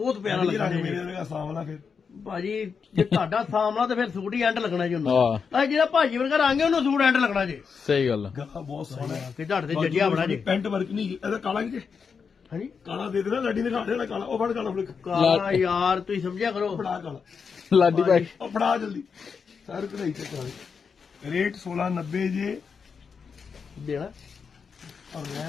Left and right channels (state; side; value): quieter; right; 5.9 dB